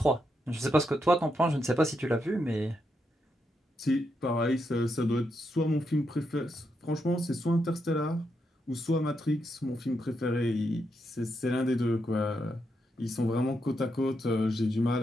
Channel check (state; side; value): normal; both; correlation 0.82